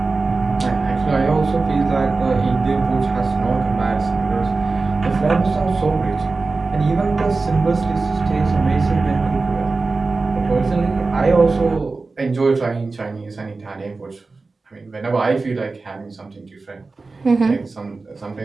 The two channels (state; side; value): quieter; left; 3.8 dB